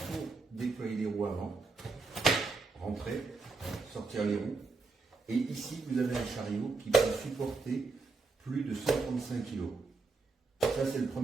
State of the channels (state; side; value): quieter; left; 4.1 dB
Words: déployer les roues avant, rentrer, sortir les roues. Et ici, vous avez un chariot qui peut supporter plus de 135 kg. Ça, c'est le